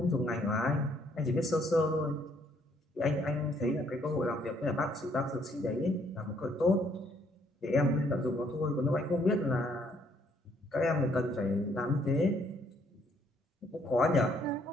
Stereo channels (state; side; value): normal; both; correlation 0.67